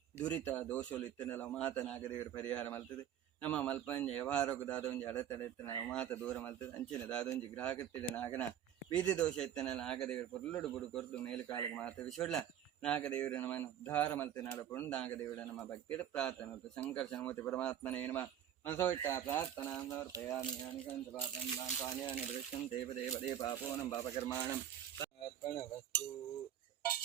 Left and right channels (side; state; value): left; quieter; 10.4 dB